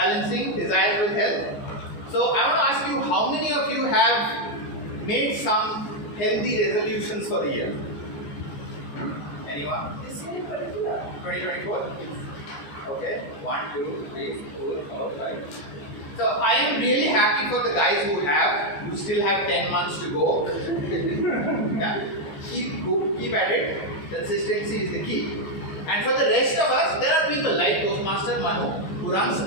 desires with health. So I want to ask you, how many of you have made some healthy resolutions for the year? Anyone? 2024? Okay. 1, 2, 3, 4, 5. So I am really happy for the guys who have. You still have 10 months to go. Yeah. Keep at it. Consistency is the key. And for the rest of us, there are people like Toastmaster Manu who runs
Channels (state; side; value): late; right; 15 ms